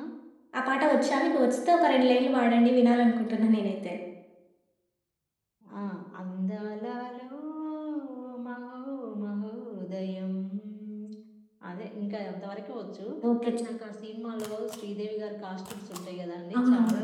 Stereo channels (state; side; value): identical; both; correlation 1.00